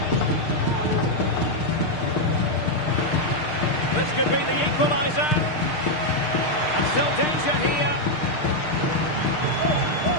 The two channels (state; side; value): late; right; 6.5 ms